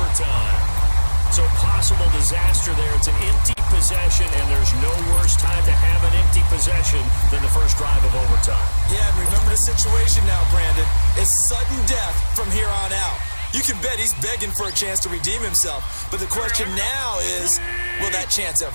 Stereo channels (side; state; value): both; inverted; correlation -1.00